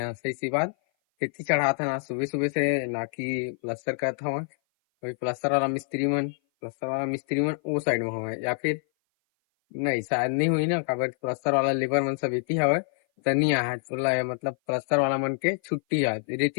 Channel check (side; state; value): right; silent; 57 dB below the other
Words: सही सी बात। रेती चढ़ा था ना सुबह सुबह से, ना कि प्लास्टर कर था वहाँ। वही प्लास्टर वाला मिस्त्री मन वो साइड में हुआ है, या फिर नहीं शायद नहीं हुई ना, काबर प्लस्तर वाला लेबर मन सब इति हवे तनी आहत बोला है, मतलब प्लस्तर वाला मन के छुट्टी आज